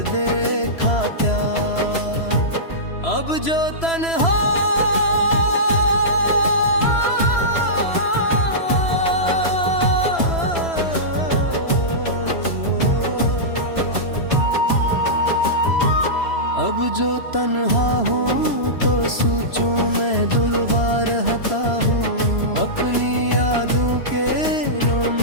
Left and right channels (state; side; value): late; right; 3.0 ms